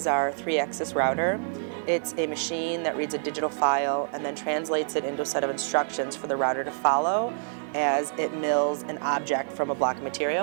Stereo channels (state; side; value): silent; left; digital silence